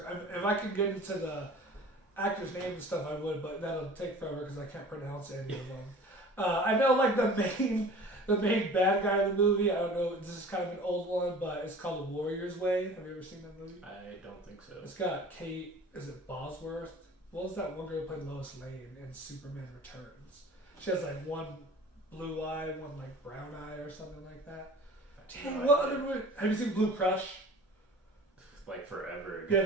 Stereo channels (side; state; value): both; normal; correlation 0.43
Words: If I could get into the actor's name and stuff, I would, but that'll take forever because I can't pronounce any of them. I know, like, the main bad guy in the movie, I don't know, this is kind of an old one, but it's called The Warrior's Way. Have you ever seen that movie? I don't think so. It's got Kate, is it Bosworth? What was that one girl who played Lois Lane in Superman Returns? She has like one blue eye, one like brown eye or something like that. Dang, what other movie? Have you seen Blue Crush? Like forever ago. Yeah,